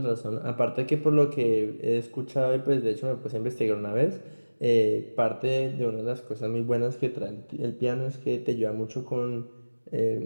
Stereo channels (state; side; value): inverted; both; correlation -1.00